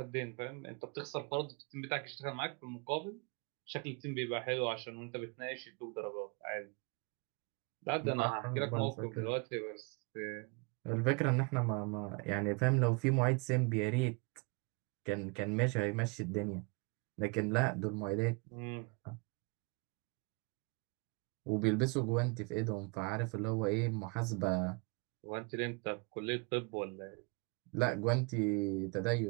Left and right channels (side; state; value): left; quieter; 31.0 dB